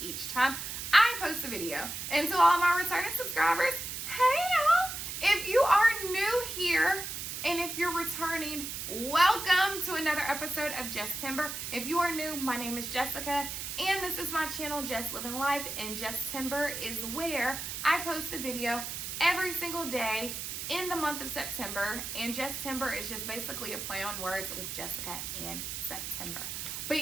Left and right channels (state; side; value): noise; right; hiss, 6 dB below the sound